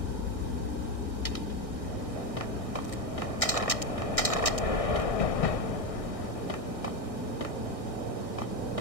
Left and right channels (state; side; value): late; right; 1.6 ms